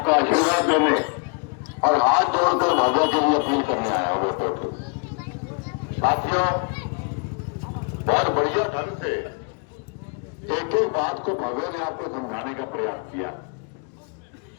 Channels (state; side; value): quieter; right; 37.0 dB